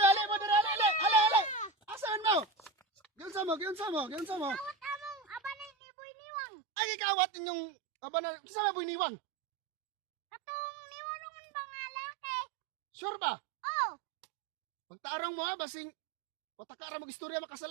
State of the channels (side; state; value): left; drops out; at 5.7 s